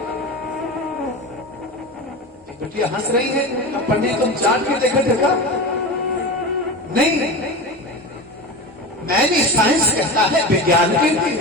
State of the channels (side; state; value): both; normal; correlation 0.27